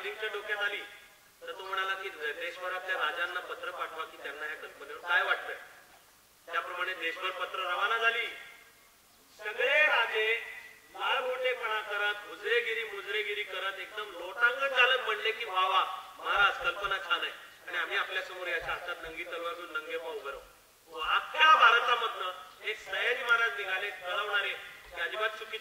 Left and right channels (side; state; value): both; identical; correlation 1.00